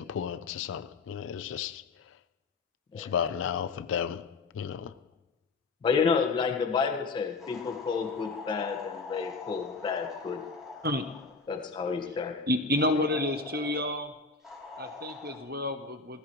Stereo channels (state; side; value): quieter; right; 4.1 dB